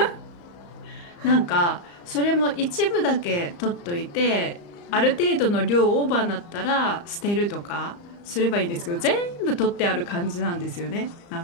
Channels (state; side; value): late; right; 35 ms